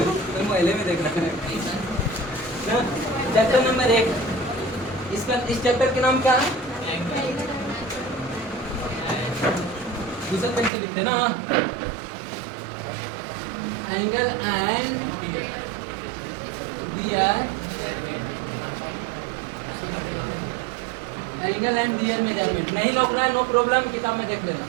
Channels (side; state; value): left; drops out; at 10.7 s